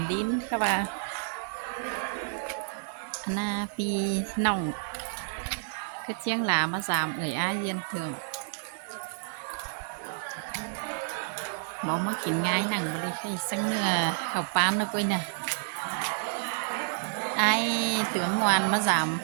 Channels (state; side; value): silent; left; digital silence